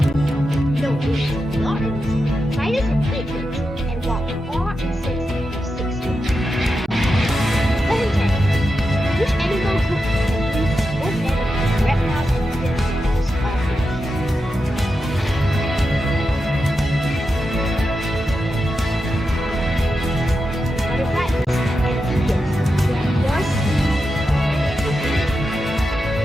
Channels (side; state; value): both; normal; correlation 0.88